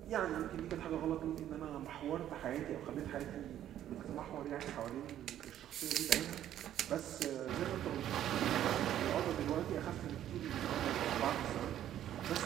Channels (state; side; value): quieter; left; 11.5 dB